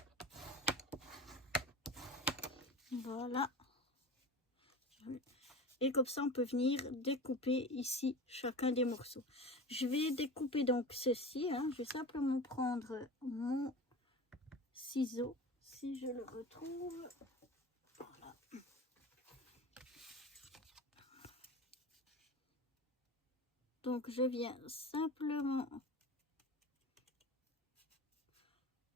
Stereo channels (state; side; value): normal; both; correlation 0.32